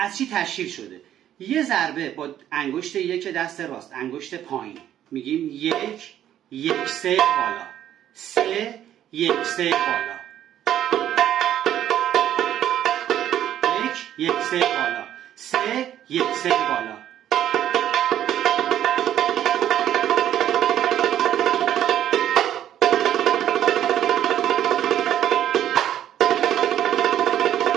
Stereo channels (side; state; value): left; quieter; 11.2 dB